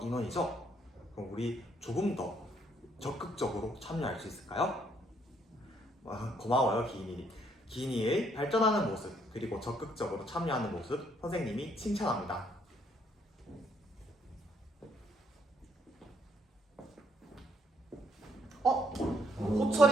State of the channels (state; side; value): normal; both; correlation 0.69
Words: 인원이죠. 그럼 우리 조금 더 적극적으로 참여할 수 있을까요? 고마워요, 기인이. 기인이의 발전하는 모습 그리고 적극적으로 참여하는 모습 선생님이 칭찬합니다.